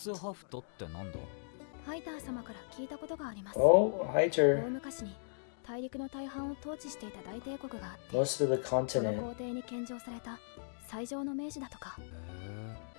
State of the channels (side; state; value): right; silent; digital silence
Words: Oh, Heiter. Most of the continent.